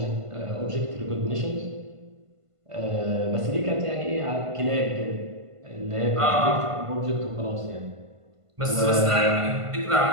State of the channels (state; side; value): late; left; 1.5 ms